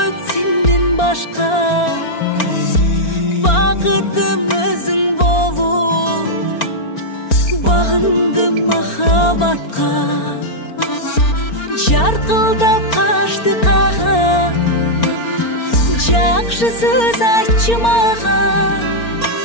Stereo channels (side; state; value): right; late; 4.4 ms